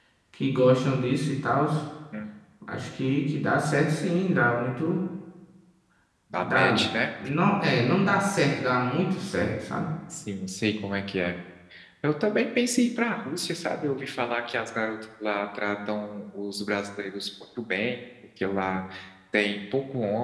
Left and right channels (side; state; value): both; identical; correlation 1.00